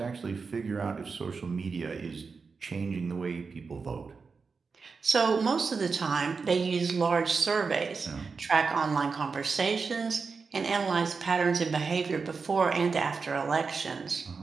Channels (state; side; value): quieter; left; 4.9 dB